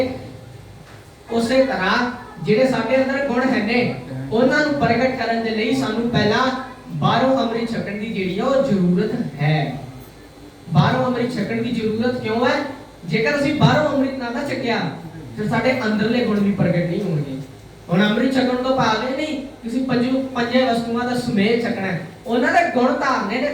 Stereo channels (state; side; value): identical; both; correlation 1.00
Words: ਉਸੇ ਤਰ੍ਹਾਂ ਜਿਹੜੇ ਸਾਡੇ ਅੰਦਰ ਗੁਣ ਹੈ ਨੇ ਉਹਨਾਂ ਨੂੰ ਪ੍ਰਗਟ ਕਰਨ ਦੇ ਲਈ ਸਾਨੂੰ ਪਹਿਲਾਂ ਬਾਹਰੋਂ ਅੰਮ੍ਰਿਤ ਛਕਣ ਦੀ ਜਿਹੜੀ ਹੈ ਉਹ ਜ਼ਰੂਰਤ ਹੈ। ਬਾਹਰੋਂ ਅੰਮ੍ਰਿਤ ਛਕਣ ਦੀ ਜ਼ਰੂਰਤ ਕਿਉਂ ਹੈ? ਜੇਕਰ ਅਸੀਂ ਬਾਹਰੋਂ ਅੰਮ੍ਰਿਤ ਨਾ ਛਕਿਆ ਫਿਰ ਸਾਡੇ ਅੰਦਰਲੇ ਗੁਣ ਵੀ ਪ੍ਰਗਟ ਨਹੀਂ ਹੋਣਗੇ। ਹੁਣ ਅੰਮ੍ਰਿਤ ਛਕਣ ਤੋਂ ਭਾਵ ਇਹ ਨਹੀਂ ਕਿਸੇ ਪੰਜੇ ਵਸਤੂਆਂ ਦਾ ਸਮੇਤ ਛਕਣਾ, ਉਹਨਾਂ ਦੇ ਗੁਣ ਧਾਰਨੇ ਨੇ